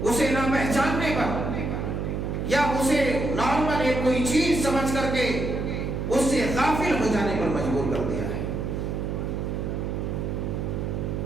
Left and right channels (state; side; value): noise; right; hum, 2 dB below the sound